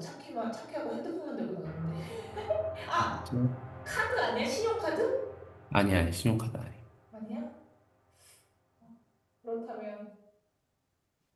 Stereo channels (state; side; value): identical; both; correlation 1.00